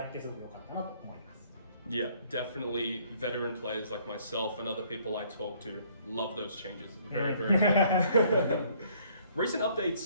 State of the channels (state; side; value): inverted; both; correlation -0.62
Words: ってすごく良かったなと思います。Yeah, definitely veteran players like myself and other people I talk to love those changes. Very, very good. Recent